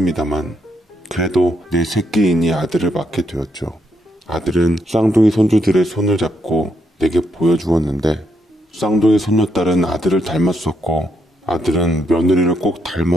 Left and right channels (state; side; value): normal; both; correlation 0.76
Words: 그래도 내 새끼이니 아들을 맡게 되었죠. 아들은 쌍둥이 손주들의 손을 잡고 내게 보여주었는데 쌍둥이 손녀딸은 아들을 닮았었고 아들은 며느리를 꼭